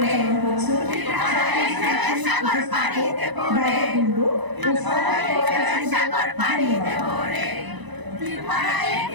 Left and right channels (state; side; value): late; left; 1.0 ms